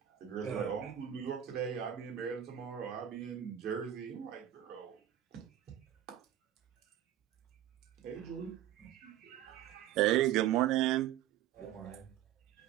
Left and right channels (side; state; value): left; quieter; 11.5 dB